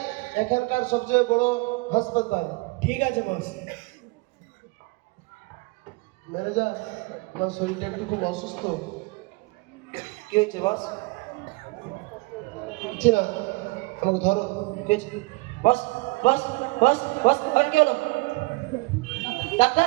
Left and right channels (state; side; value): quieter; left; 26.0 dB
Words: এখানকার সবচেয়ে বড় হাসপাতাল। ঠিক আছে বস। ম্যানেজার, আমার শরীরটা একটু খুব অসুস্থ, কি হয়েছে বস? বুঝছি না, আমাকে ধরো। কি হয়েছে? বস বস বস বস আর কি হলো?